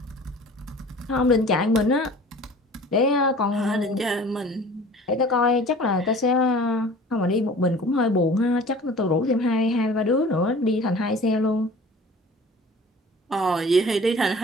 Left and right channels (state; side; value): normal; both; correlation 0.45